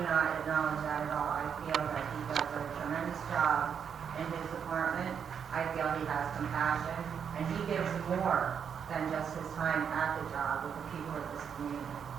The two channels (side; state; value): left; quieter; 7.4 dB